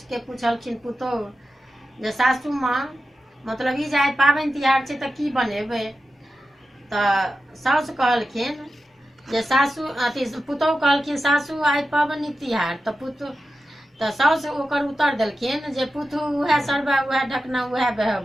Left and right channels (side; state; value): both; normal; correlation 0.92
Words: पुछलखिन पुतोहु जे सासू माँ मतलब ई जे आइ पाबनि तिहार छै तऽ की बनेबै? तऽ साउस कहलखिन जे सासू अथी पुतोहु कहलखिन सासू आइ पाबनि तिहार। तऽ साउस ओकर उत्तर देलखिन जे पुतहु उएह सरबा उएह ढकना उएह